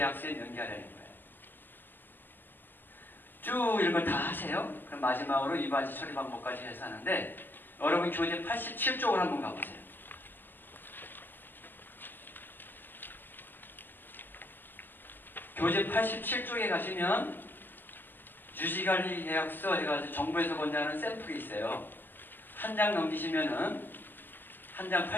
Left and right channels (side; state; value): right; late; 0.090 ms